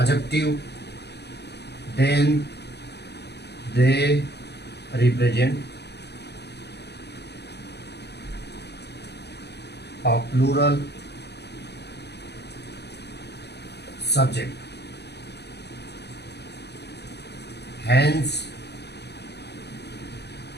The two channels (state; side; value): late; right; 0.49 ms